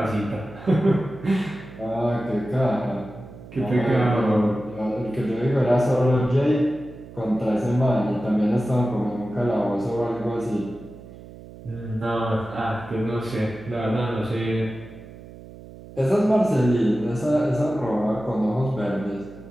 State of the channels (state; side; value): noise; right; hum, 17 dB below the sound